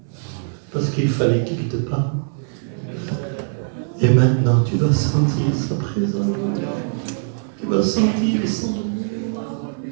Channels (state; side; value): silent; left; digital silence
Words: Parce qu'il fallait qu'il te parle. Et maintenant tu vas sentir sa présence. Tu vas sentir son amour.